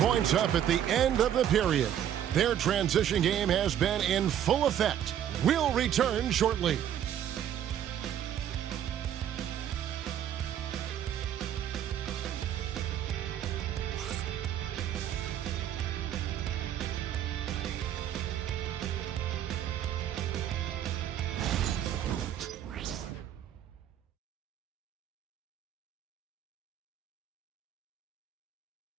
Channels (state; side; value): quieter; left; 10.3 dB